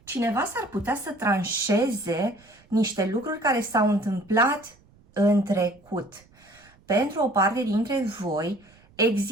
Cineva s-ar putea să tranșeze niște lucruri care s-au întâmplat în trecut. Pentru o parte dintre voi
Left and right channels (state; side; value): noise; right; rumble, 29 dB below the sound